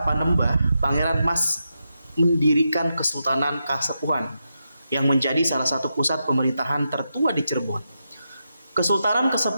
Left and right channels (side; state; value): both; inverted; correlation -0.86